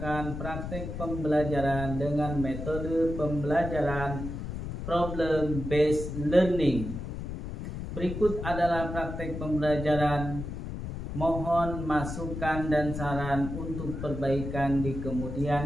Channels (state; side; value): noise; left; rumble, 6 dB below the sound